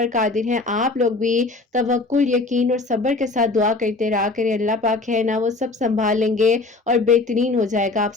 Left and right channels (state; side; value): quieter; right; 3.4 dB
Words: قادر ہیں۔ آپ لوگ بھی توکل، یقین اور صبر کے ساتھ دعا کرتے رہا کریں، اللہ پاک ہے نا وہ سب سنبھال لیں گے اور بہترین ہو جائے گا آپ